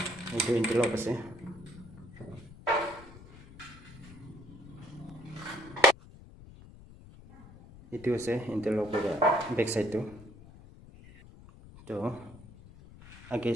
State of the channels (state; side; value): noise; left; rumble, 19 dB below the sound